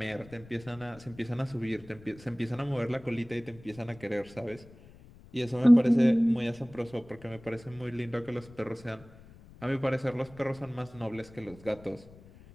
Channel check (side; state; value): left; noise; rumble, 21 dB below the sound